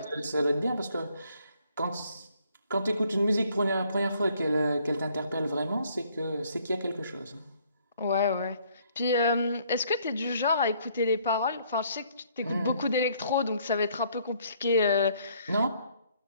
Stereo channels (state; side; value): inverted; both; correlation -0.65